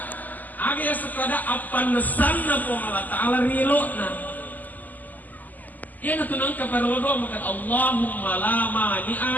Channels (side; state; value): right; late; 0.083 ms